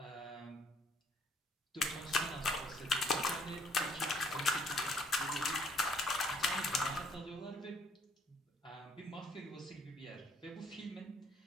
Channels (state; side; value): normal; both; correlation 0.64